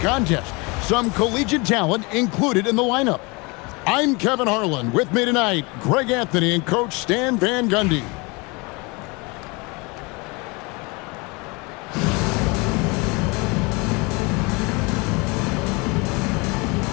Some collegiate talent included in the lineup. I'm Kevin Harlan. With me tonight, Greg Anthony and Coach Stan Van Gundy.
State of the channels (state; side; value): quieter; right; 27.6 dB